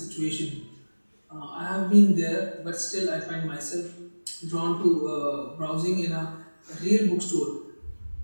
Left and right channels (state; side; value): inverted; both; correlation -1.00